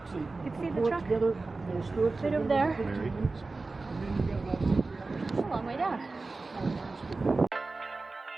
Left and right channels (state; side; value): quieter; left; 3.6 dB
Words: You can see the truck right over there. It's a long way down.